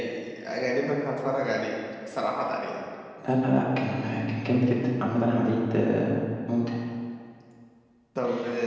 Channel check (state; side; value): identical; both; correlation 1.00